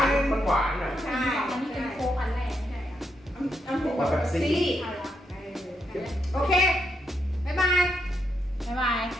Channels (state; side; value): normal; both; correlation 0.80